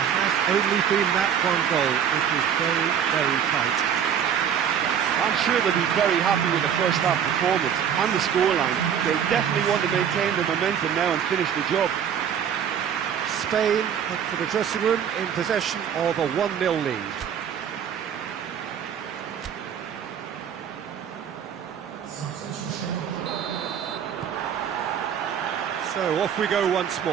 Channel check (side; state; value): left; quieter; 8.5 dB